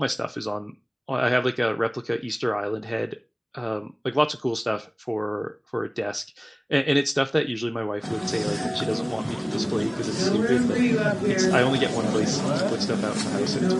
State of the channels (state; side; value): identical; both; correlation 1.00